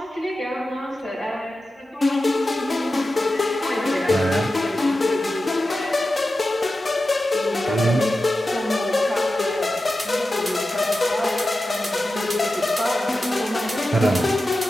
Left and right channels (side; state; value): both; normal; correlation 0.92